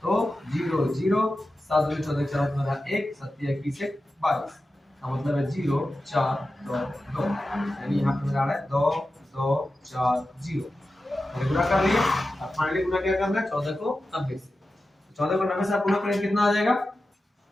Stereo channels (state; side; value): normal; both; correlation 0.93